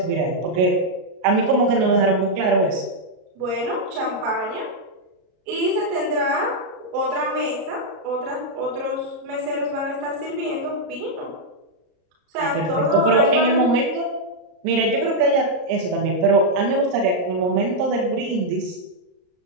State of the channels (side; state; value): left; late; 33 ms